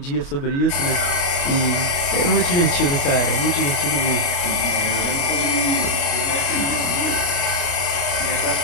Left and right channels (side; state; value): right; late; 29 ms